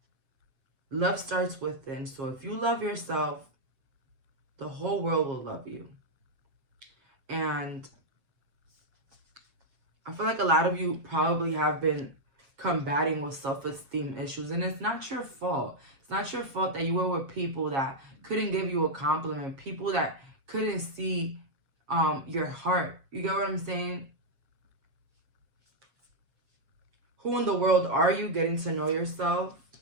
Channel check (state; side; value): late; left; 7.4 ms